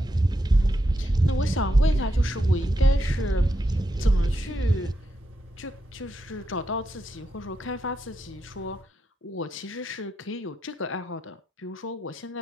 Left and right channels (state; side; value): normal; both; correlation 0.84